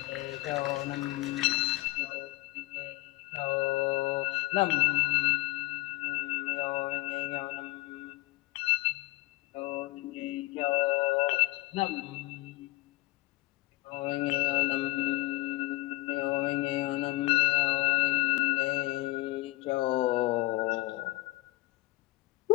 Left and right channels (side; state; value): right; quieter; 20.7 dB